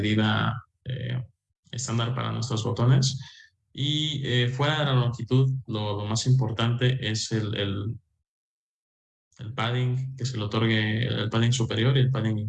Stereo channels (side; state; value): both; identical; correlation 1.00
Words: estándar para nuestros botones. Y fuera de la longitud, lo más importante es el padding que se le otorgue, el padding superior y el padding